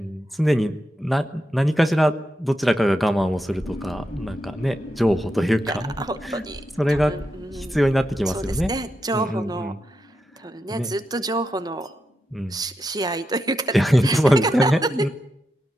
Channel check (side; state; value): both; normal; correlation 0.86